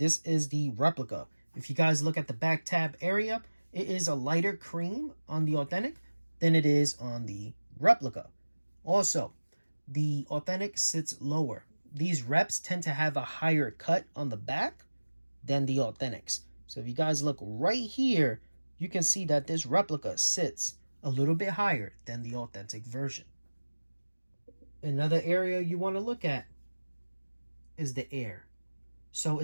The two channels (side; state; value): both; inverted; correlation -1.00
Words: is the replica. If you guys look at the back tab area, it is a lighter cream on the Authentic than it is on the replica. Also, the Authentic sits lower. These Reps tend to have a higher cut on the back than the Authentics. So if you guys look right here, you can see that this replica sits a little bit higher than the Authentic version. Another area you want to look at is the air. So